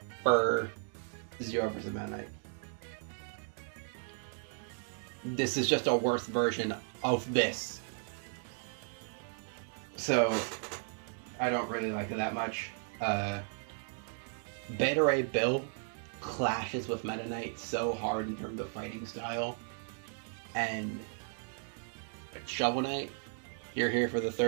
for Zero versus Meta Knight. This is just a worse version of this. So, I don't really like it that much. Beta Ray Bill clashes with Meta Knight so hard in terms of fighting style. And Shovel Knight, you're here for the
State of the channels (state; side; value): silent; left; 54 dB below the other